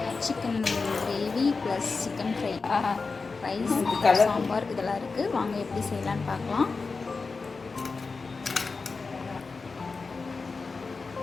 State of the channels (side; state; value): right; quieter; 4.3 dB